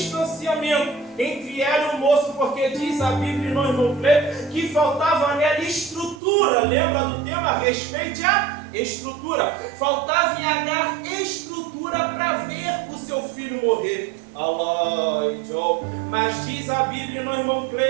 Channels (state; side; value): drops out; left; at 6.2 s